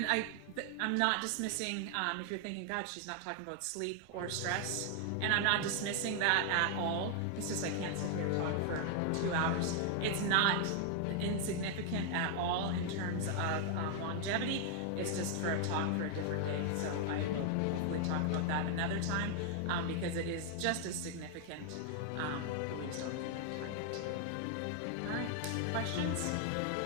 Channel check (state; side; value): different; both; correlation 0.00